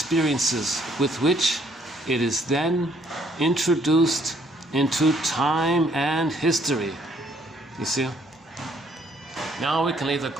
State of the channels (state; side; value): normal; both; correlation 0.66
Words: with which it is then introduced into time and history. You see? Now we can leave the